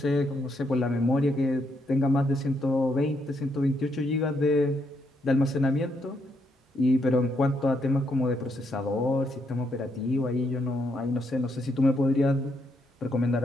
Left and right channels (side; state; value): both; normal; correlation 0.76